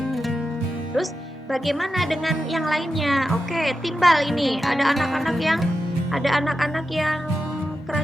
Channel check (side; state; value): both; normal; correlation 0.89